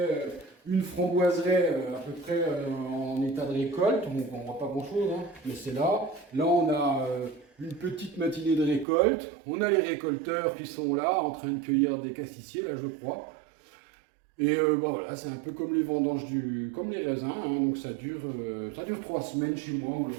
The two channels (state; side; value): drops out; left; at 8.8 s